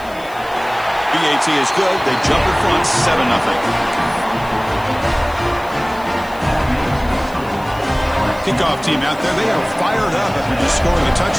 BAT is good. They jump in front, 7-0. Kickoff team out there. They are fired up after just scoring a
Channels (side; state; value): left; noise; hiss, 23 dB below the sound